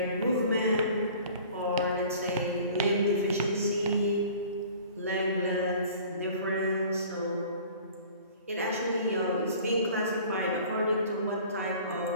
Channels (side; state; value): both; inverted; correlation -0.47